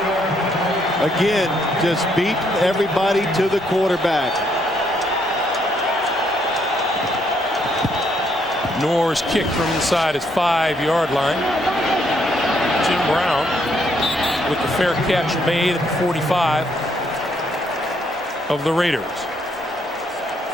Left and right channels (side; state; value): both; normal; correlation 0.72